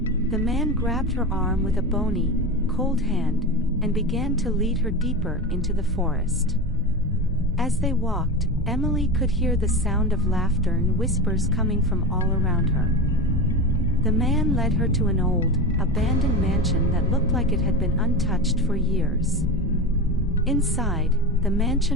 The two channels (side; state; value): both; normal; correlation 0.23